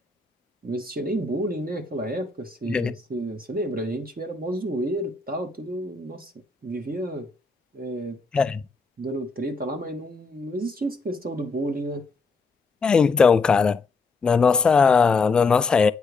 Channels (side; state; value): right; quieter; 4.1 dB